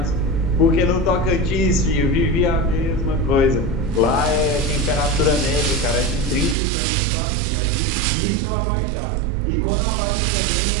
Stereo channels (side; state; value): left; drops out; at 6.6 s